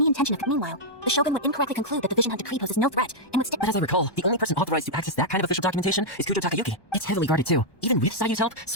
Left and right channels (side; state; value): right; late; 1.2 ms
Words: intention of... Meanwhile, the Shogun would incorrectly conclude that the Vision Hunt Decree poses no threat and would stick... But as I recall, the only person authorized to access that kind of official documentation is Kujo Takayuki. It's heavily guarded too. Even with Sayu's help,